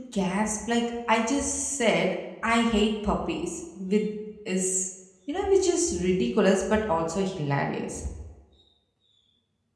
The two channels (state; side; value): identical; both; correlation 1.00